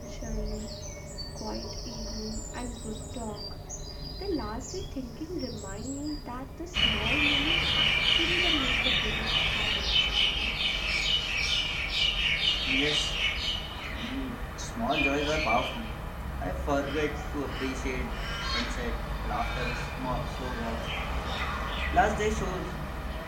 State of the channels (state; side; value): identical; both; correlation 1.00